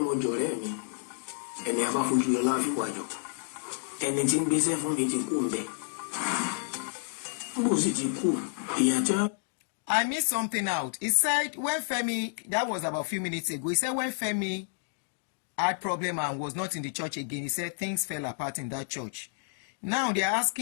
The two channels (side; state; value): right; silent; digital silence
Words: jọ̀rẹ́ mi ẹni a bá fojú lọ láàfin wájọ ẹni tí ń gbéṣẹ́ fún mi ti kú ń bẹ. Bó sì ti kú èèyàn tí wọ́n. I missed something out. He said when Femi, that was about a few minutes ago, he said when Femi had problem and was not in the church again, he said things fell apart in that church. Now they are